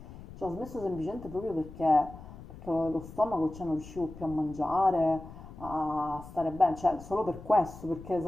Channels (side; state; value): left; noise; rumble, 15 dB below the sound